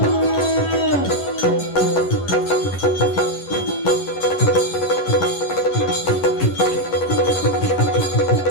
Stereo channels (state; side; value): late; right; 11 ms